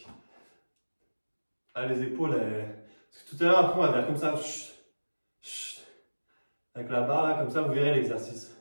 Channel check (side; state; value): both; inverted; correlation -1.00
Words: Ah, les épaules, parce que tout à l'heure, après, on va faire comme ça. Chut, chut. Avec la barre, là, comme ça, vous verrez l'exercice.